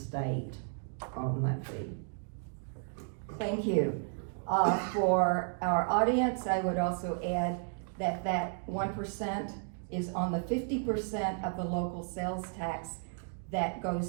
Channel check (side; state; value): left; silent; 55 dB below the other